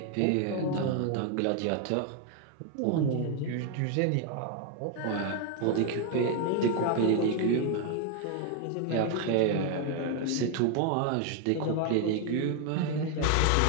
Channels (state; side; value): different; both; correlation 0.01